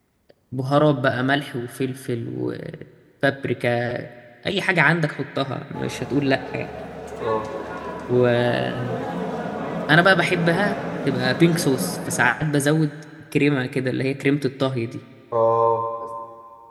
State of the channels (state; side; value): identical; both; correlation 1.00